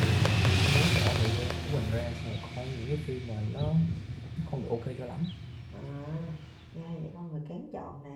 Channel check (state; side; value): identical; both; correlation 1.00